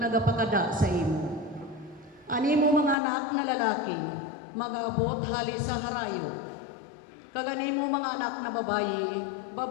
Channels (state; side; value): drops out; right; at 3.0 s